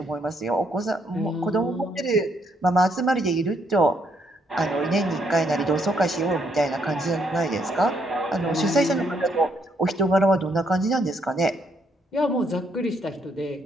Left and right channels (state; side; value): normal; both; correlation 0.73